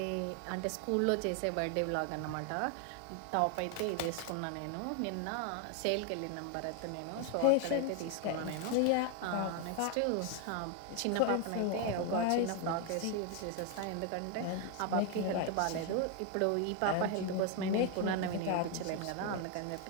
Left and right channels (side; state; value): both; different; correlation 0.01